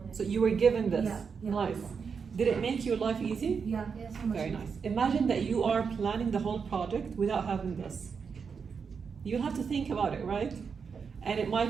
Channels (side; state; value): left; quieter; 5.9 dB